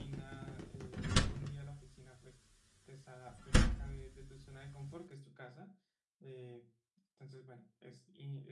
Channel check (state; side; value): identical; both; correlation 1.00